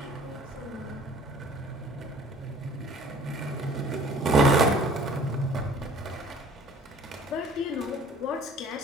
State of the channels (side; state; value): both; normal; correlation 0.49